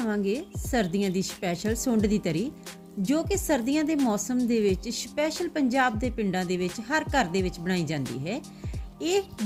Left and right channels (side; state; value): both; identical; correlation 1.00